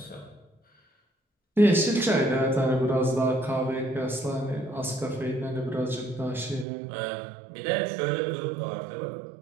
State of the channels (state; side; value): drops out; left; at 6.7 s